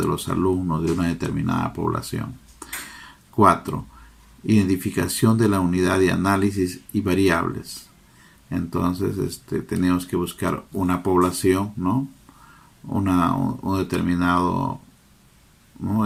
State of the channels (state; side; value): identical; both; correlation 1.00